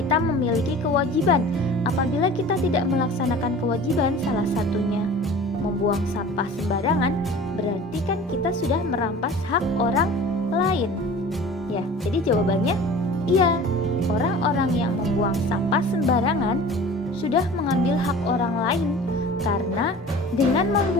memiliki kewajiban. Apabila kita tidak melaksanakan kewajiban, salah satunya membuang sampah sembarangan, berarti kan kita sudah merampas hak orang lain. Ya, jadi jawabannya iya. Orang-orang yang membuang sampah sembarangan sudah mengambil hak orang lain karena dengan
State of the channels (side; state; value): both; normal; correlation 0.41